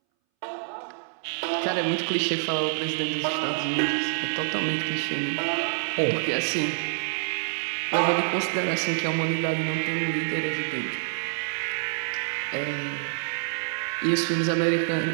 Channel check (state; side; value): silent; left; 60 dB below the other